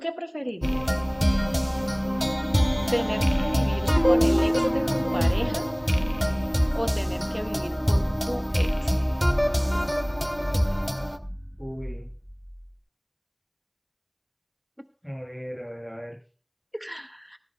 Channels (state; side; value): identical; both; correlation 1.00